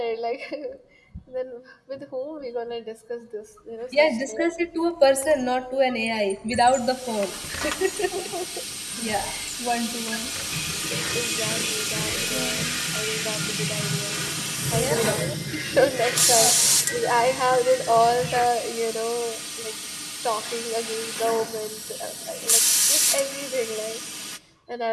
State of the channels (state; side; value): identical; both; correlation 1.00